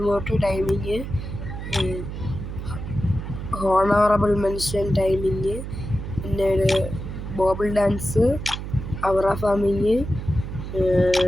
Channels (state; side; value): noise; right; hum, 7 dB below the sound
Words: emote timing honourable mention timing പിന്നീട് ബോബിൾ ഡാൻസ് അവറ ഫാമിങ്